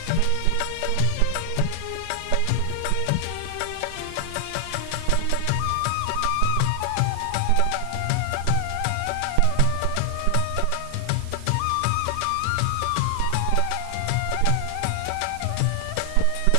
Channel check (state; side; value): different; both; correlation 0.00